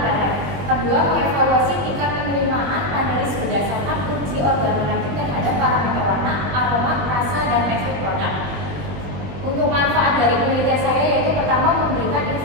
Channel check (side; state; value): left; late; 21 ms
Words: Kedua, mengevaluasi tingkat penerimaan panelis berdasarkan uji organoleptik terhadap parameter warna, aroma, rasa, dan tekstur produk. Untuk manfaat dari penelitian saya yaitu pertama memberikan